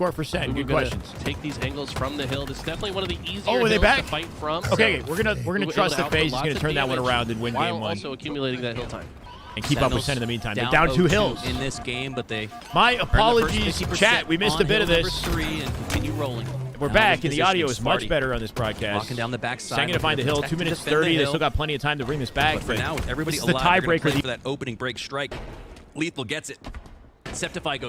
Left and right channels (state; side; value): identical; both; correlation 1.00